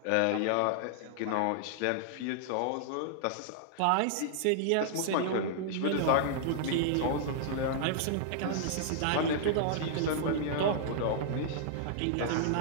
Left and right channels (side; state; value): both; different; correlation -0.01